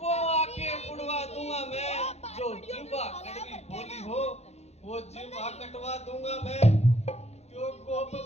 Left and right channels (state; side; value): late; right; 0.31 ms